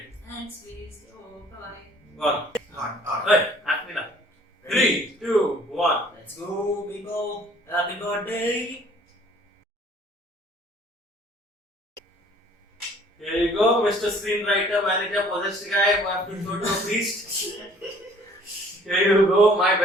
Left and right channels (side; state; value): both; normal; correlation 0.55